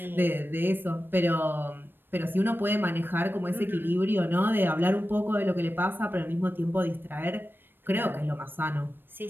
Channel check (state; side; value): late; left; 0.097 ms